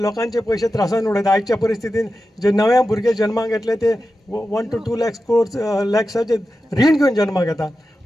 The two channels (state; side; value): normal; both; correlation 0.92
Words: लोकांचे पयशे त्रासान उडयता. आयच्या परिस्थितीन जे नवे भुरगे जन्माक येतले ते 1 to 2 lakhs रीण घेवन जन्माक येता.